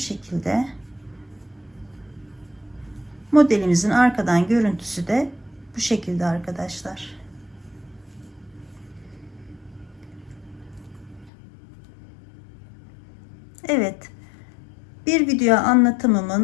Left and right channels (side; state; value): right; drops out; at 11.3 s